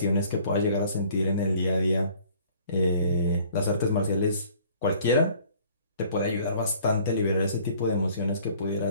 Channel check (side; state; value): both; inverted; correlation -0.55